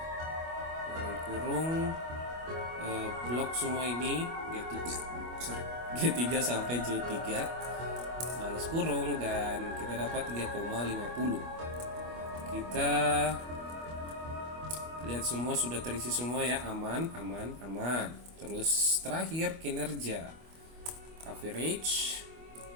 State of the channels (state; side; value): late; left; 25 ms